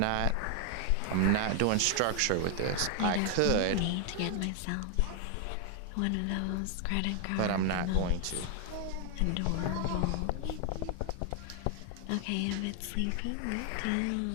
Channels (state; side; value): different; both; correlation 0.00